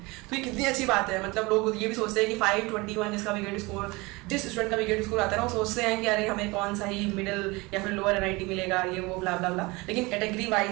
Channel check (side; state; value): left; quieter; 24.0 dB